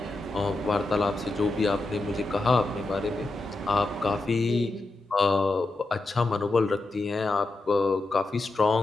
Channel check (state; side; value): quieter; right; 3.0 dB